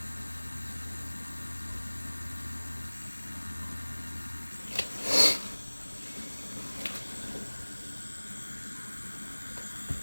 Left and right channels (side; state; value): both; inverted; correlation -1.00